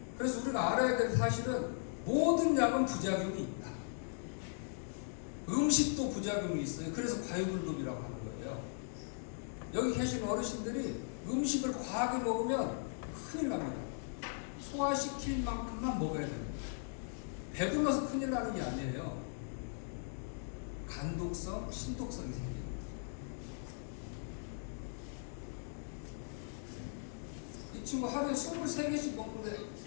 그래서 우리가 알아야 될 사실은 모든 약은 부작용이 있다. 음식도 부작용이 있어요. 그래서 과유불급이라고 하는 거예요. 여기 계신 어르신들이 음식을 과하게 먹으면 큰일 납니다. 소화시킬 만큼만 먹어야 됩니다. 배불러서 큰일 나는 게 아니에요. 간독성, 신독성이 생겨요. 이 친구 하루에 23개씩 먹는데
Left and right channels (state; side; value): silent; right; digital silence